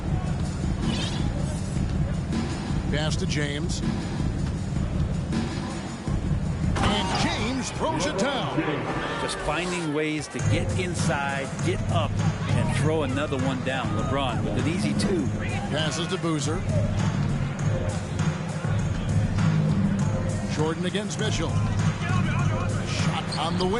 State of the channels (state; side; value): identical; both; correlation 1.00